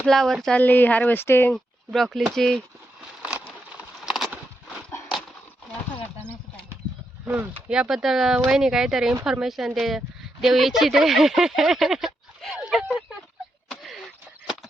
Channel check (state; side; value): normal; both; correlation 0.83